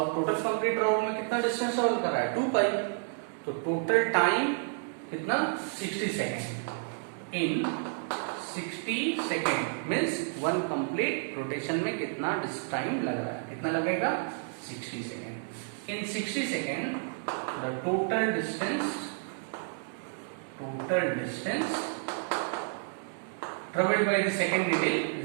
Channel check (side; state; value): left; silent; 57 dB below the other